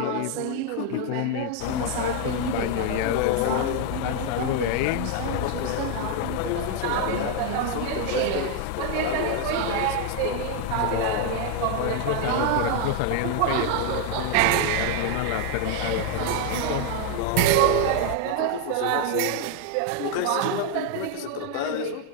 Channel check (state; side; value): different; both; correlation 0.00